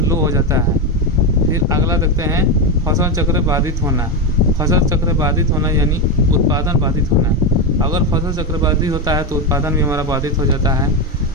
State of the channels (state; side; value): normal; both; correlation 0.11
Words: लो हो जाता है। फिर अगला देखते हैं, फसल चक्र बाधित होना। फसल चक्र बाधित होना यानी उत्पादन बाधित होना। अगर फसल चक्र बाधित होता है तो उत्पादन भी हमारा बाधित हो जाता है।